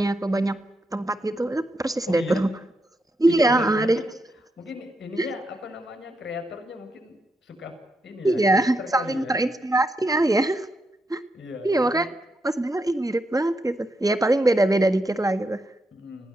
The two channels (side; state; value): both; normal; correlation 0.82